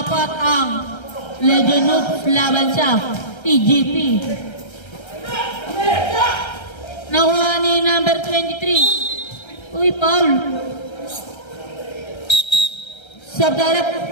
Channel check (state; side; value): late; right; 1.3 ms